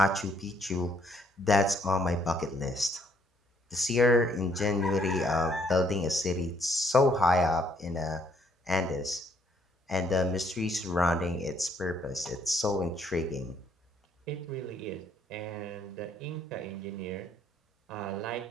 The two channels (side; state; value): both; normal; correlation 0.67